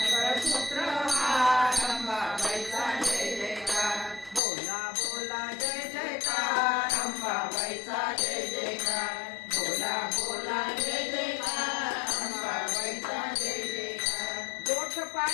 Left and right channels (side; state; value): right; drops out; at 4.4 s